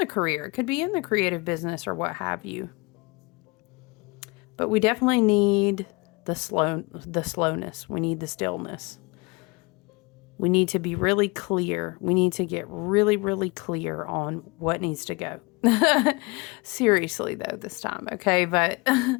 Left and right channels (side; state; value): right; quieter; 26.9 dB